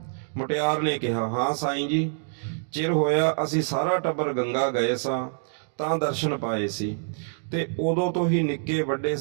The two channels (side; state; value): left; silent; digital silence